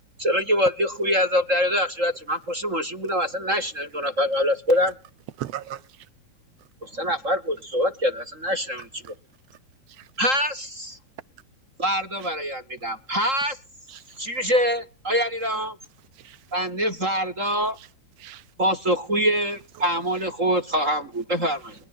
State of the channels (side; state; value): left; late; 3.8 ms